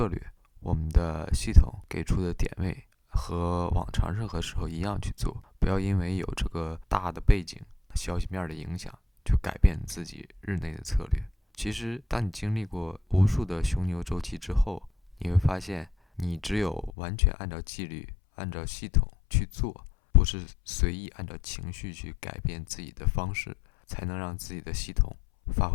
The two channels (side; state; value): right; drops out; at 16.9 s